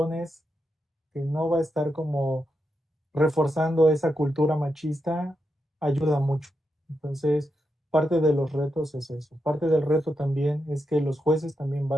que no va a estar como reforzando esa cultura machista ayuda mucho. Entonces, parte de los retos es eso. Parte del reto también es que los jueces también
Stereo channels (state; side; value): normal; both; correlation 0.86